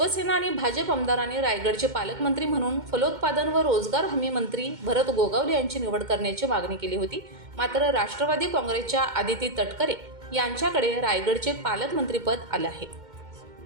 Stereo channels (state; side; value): late; left; 2.1 ms